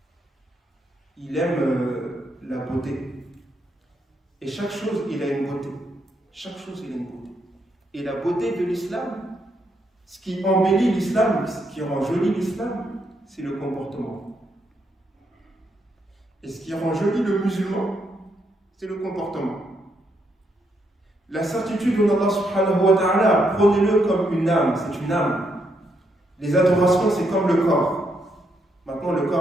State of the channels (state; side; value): normal; both; correlation 0.77